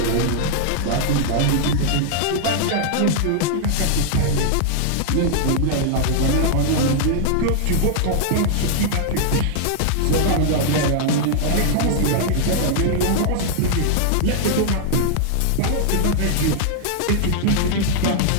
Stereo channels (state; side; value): different; both; correlation -0.01